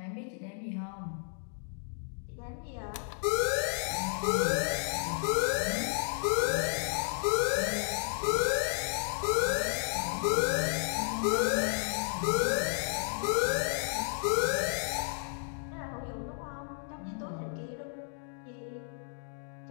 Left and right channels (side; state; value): right; silent; 56 dB below the other